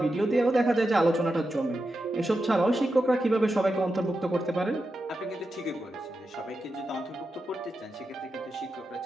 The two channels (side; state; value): both; normal; correlation 0.89